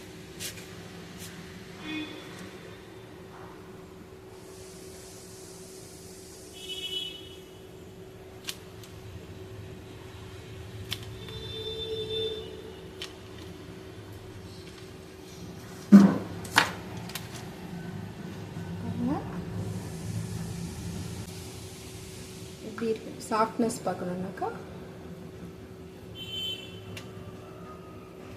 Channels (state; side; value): identical; both; correlation 1.00